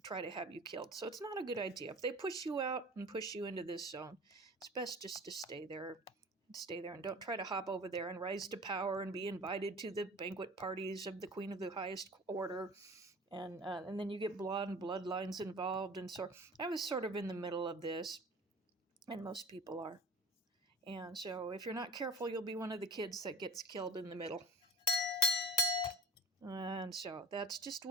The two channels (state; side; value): normal; both; correlation 0.40